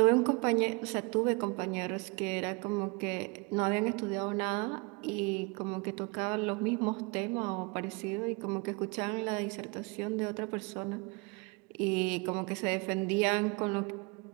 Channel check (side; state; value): left; quieter; 29.6 dB